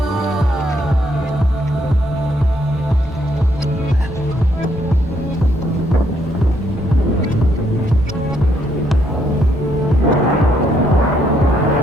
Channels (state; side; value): normal; both; correlation 0.72